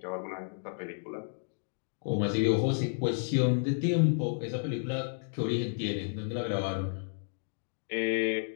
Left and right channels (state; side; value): silent; right; digital silence